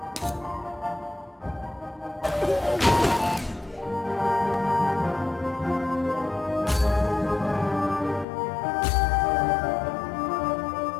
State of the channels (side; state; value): right; drops out; at 8.2 s